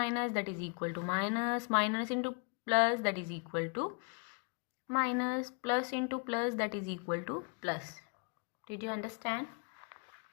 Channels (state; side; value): quieter; right; 37.4 dB